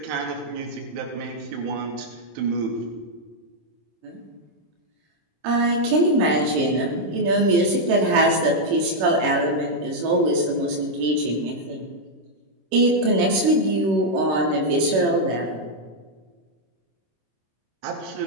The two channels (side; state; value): left; late; 26 ms